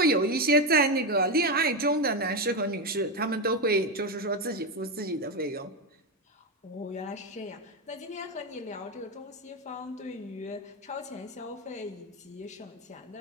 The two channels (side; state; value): both; normal; correlation 0.11